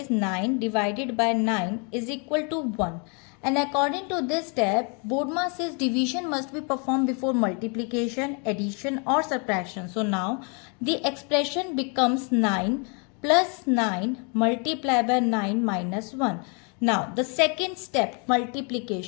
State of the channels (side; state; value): right; quieter; 35.8 dB